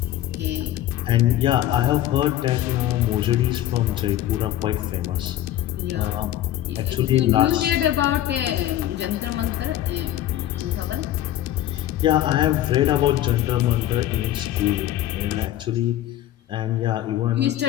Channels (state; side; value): quieter; right; 13.2 dB